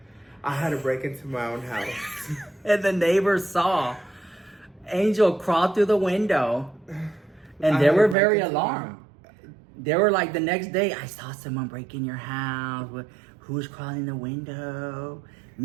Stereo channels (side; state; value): left; drops out; at 8.2 s